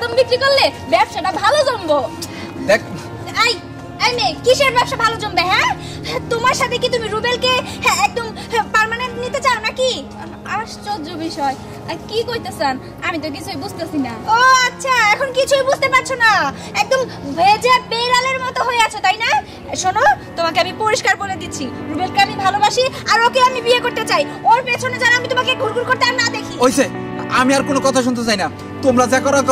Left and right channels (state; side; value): identical; both; correlation 1.00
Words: বিক্রি করলে ব্যবসাটা ভালো জমবো। দেখ এই এই মেয়ে, কিসের ব্যবসা ভালো জমবে? হ্যাঁ, তোমার সাথে কি তুমি রুবেলকে একদম পার্মানেন্ট নিতে চাও নাকি? আশ্চর্য বিষয়, কি কইতেছেন? আমি তো কিছুই বুঝতেছি না। ও আচ্ছা, এখন কিছুই বুঝতে পারছো না? একদম ভেজা বেড়ালের মতো হয়ে আছো, তাই না? শোনো, তোমাকে আমি পরিষ্কার বলে দিচ্ছি, রুবেলকে আমি ভালোবাসি আর ওকে আমি বিয়ে করতে চাই। ওর পেছনে যেন আমি তোমাকে ঘুরঘুর করতে আর না দেখি। ওইসে, আমি আর কোনো কথা শুনতে চাই না। তোমরা যা করো